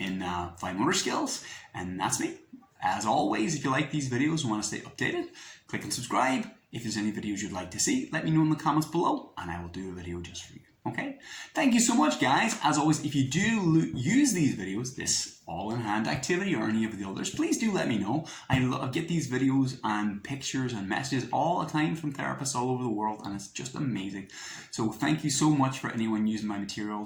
fine motor skills, and that's me. As always, if you like these videos and want to stay updated, click and subscribe. If there's any videos you'd like to see, let me know in the comments below, and I will do a video just for you. Okay? Thank you so much, guys. As always, if you do use these videos, this all-in-hand activity or any of the others, please do let me know. I get these videos and pictures and messages all the time from therapists all over the world, and it's just amazing. So thank you so much for anyone using my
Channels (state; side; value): identical; both; correlation 1.00